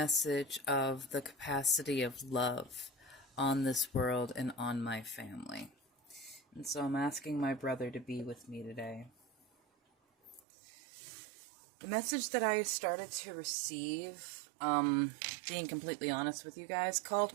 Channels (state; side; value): drops out; left; at 10.4 s